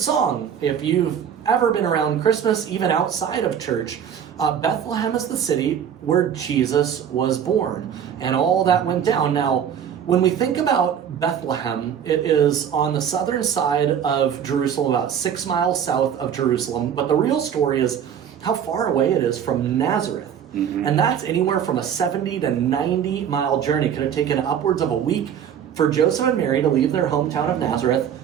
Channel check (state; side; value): quieter; left; 8.6 dB